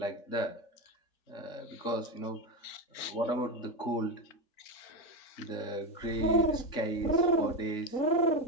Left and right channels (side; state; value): right; late; 3.5 ms